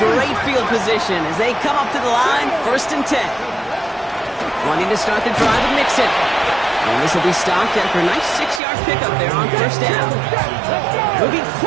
field position as they come up to the line, 1st and 10. Wanting to start the drive with Mixon. And this will be stopped after a nice 6-yard pickup there on 1st down. Moving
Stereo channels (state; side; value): drops out; left; at 8.6 s